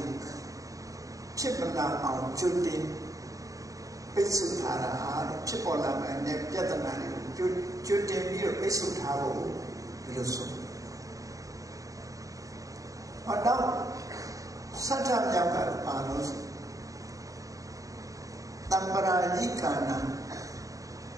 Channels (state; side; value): late; left; 0.16 ms